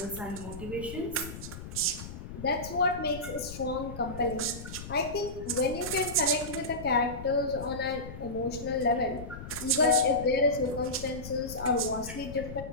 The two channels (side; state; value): left; noise; rumble, 11 dB below the sound